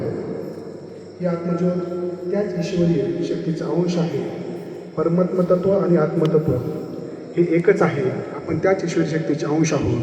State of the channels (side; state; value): both; identical; correlation 1.00